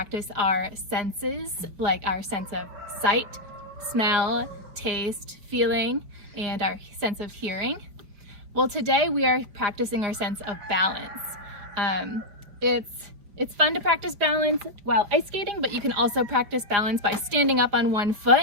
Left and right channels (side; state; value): left; late; 5.0 ms